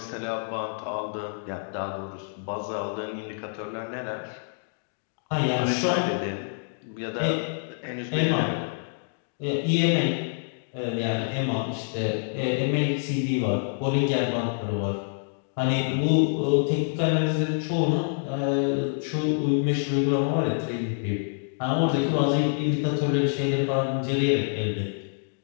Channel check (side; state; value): right; silent; digital silence